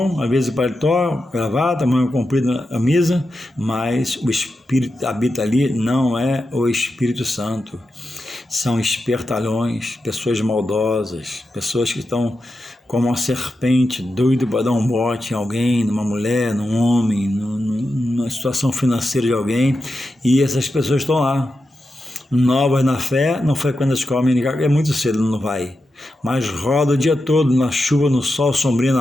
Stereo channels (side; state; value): both; normal; correlation 0.89